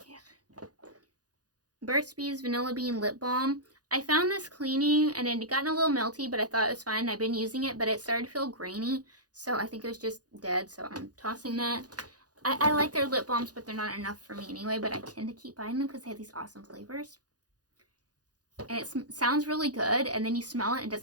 Yeah. Burt's Bees Vanilla Bean Lip Balm. I found this cleaning, and it had gotten a little melty, but I thought it was fine. I've been using it, but it started to feel grainy. So I think it was just dead, so I'm tossing that. I like their lip balms, but they're not enough for me anyway, but I tend to keep buying them because they have these awesome flavors. And it sounds really good, and then you smell it, and it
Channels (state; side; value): late; left; 0.68 ms